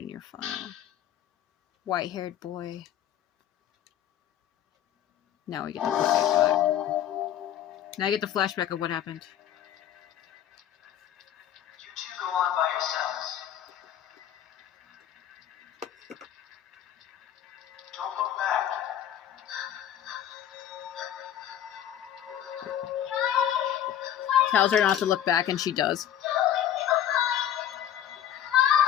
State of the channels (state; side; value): quieter; right; 10.6 dB